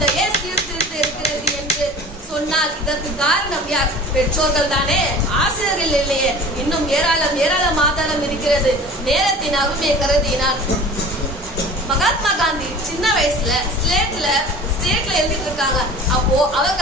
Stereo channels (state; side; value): normal; both; correlation 0.41